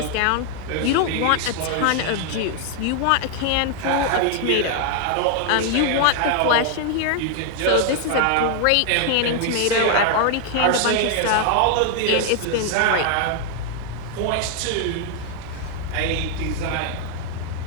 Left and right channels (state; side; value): different; both; correlation 0.00